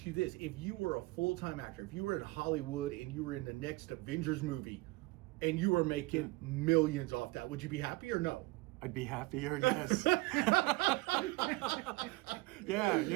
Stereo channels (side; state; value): left; quieter; 22.5 dB